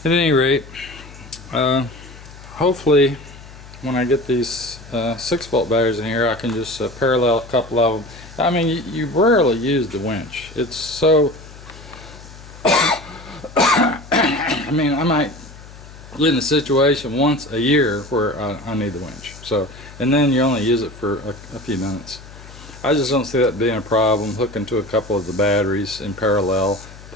at any rate, hopefully when I get these 6-volt batteries in here, I can just parallel a couple of them. I mean, you rarely use the winch. It's so I mean, I might get in a situation once a year where I need the winch. So, and then you only use it for a few minutes. I just don't see that being a problem, hooking to a couple of the batteries in parallel,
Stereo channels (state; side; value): noise; left; hum, 18 dB below the sound